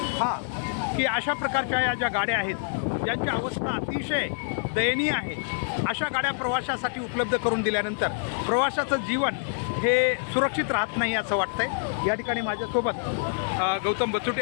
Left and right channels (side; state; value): right; silent; digital silence